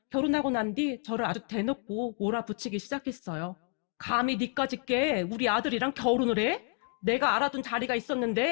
결혼하고 난 뒤 저를 아주 대놓고 몰아붙이기 시작했어요. 감히 니까짓 게 우리 아들이랑 결혼을 해? 내가 알아둔 자리가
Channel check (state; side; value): quieter; right; 39.6 dB